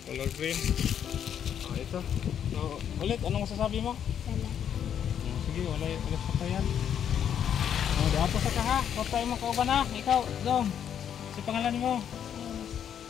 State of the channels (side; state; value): right; quieter; 8.9 dB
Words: color green. Ito. So, ulit, anong masasabi mo? Sige, ulit sa payan. Diapo sa ka ha. Huwag tayo mo kauban ha. Ikaw, Dong. Si pangalan mo?